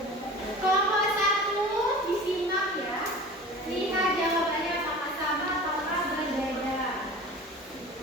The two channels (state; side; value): normal; both; correlation 0.38